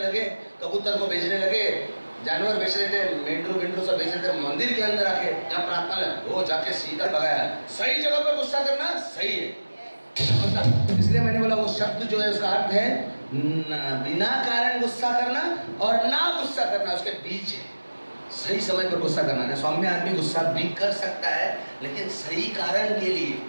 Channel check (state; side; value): inverted; both; correlation -1.00